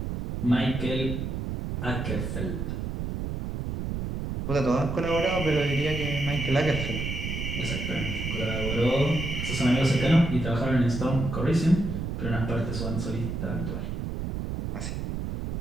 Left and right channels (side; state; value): right; noise; rumble, 4 dB below the sound